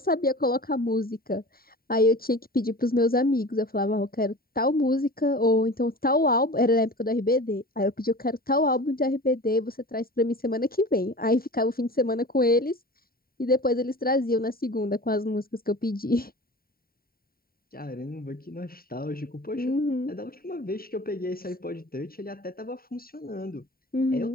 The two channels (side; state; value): right; late; 0.43 ms